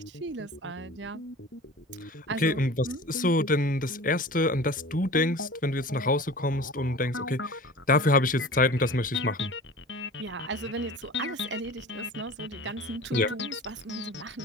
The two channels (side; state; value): both; normal; correlation 0.38